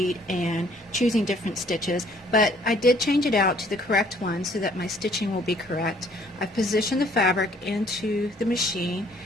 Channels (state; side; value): normal; both; correlation 0.60